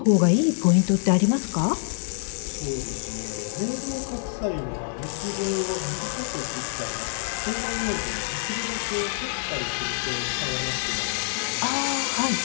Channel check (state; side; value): silent; right; digital silence